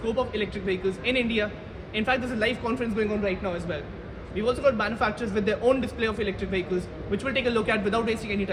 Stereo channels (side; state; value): both; identical; correlation 1.00